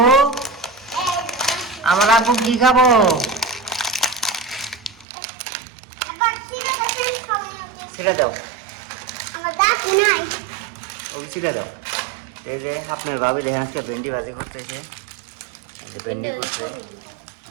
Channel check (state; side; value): drops out; left; at 5.1 s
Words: আমার আব্বু কি খাবো? ছিঁড়ে দাও, ওকে ছিঁড়ে দাও। এই যে আপনার ভাবি দেখেন আজকে ভেন্ডি ভাজি করতেছে, ভেন্ডি করছে